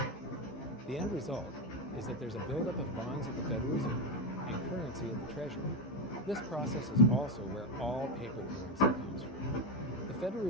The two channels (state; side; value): normal; both; correlation 0.10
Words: The end result is that there's a buildup of bonds at the Federal Reserve and currency at the Treasury. This process is also where all paper currency comes from. The Federal